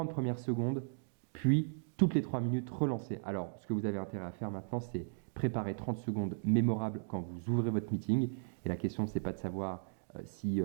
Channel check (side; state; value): left; silent; digital silence